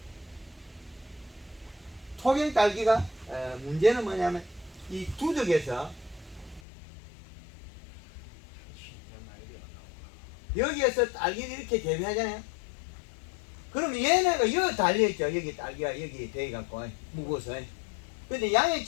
토경 딸기가 문제는 뭐냐면 이 두덕에서 여기에서 딸기를 이렇게 재배하잖아요. 그러면 얘네가 여기 달려있죠. 여기 딸기가 여기 돼갖고 무거워서. 근데 양의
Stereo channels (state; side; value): drops out; right; at 6.6 s